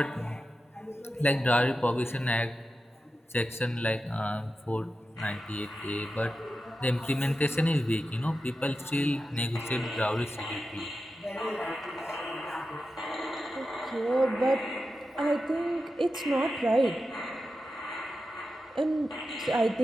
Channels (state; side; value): normal; both; correlation 0.91